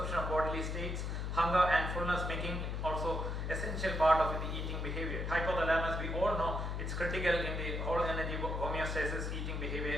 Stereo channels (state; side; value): noise; left; hum, 2 dB below the sound